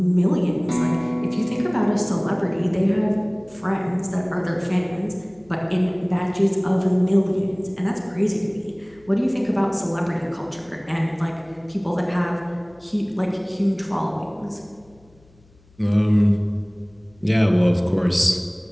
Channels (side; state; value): left; noise; hum, 30 dB below the sound